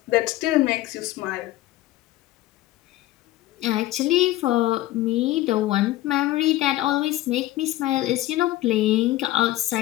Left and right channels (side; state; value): right; quieter; 16.0 dB